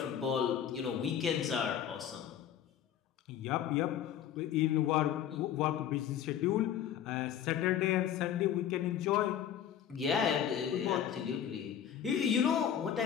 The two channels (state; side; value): quieter; right; 9.7 dB